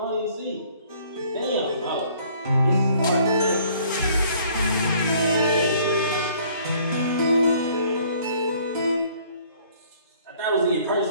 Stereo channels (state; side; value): inverted; both; correlation -0.58